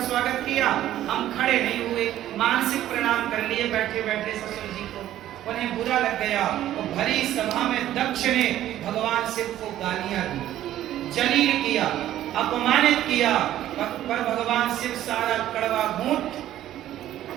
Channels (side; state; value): left; quieter; 12.8 dB